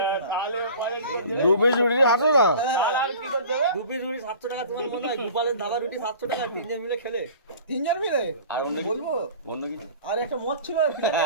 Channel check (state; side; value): inverted; both; correlation -0.43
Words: তাহলে দু পিস রুটি 700 টাকা। তাহলে আমি কি করতে হবে? 2 পিস রুটি 700 টাকা তোমার মনে হয় গোপালের ধাবা রুটি 700 টাকা তিনজন মিলে খেলে তিনজন মিলে আর অন্য কিছু? বলবো অন্য কিছু আর একটা মদ ছিল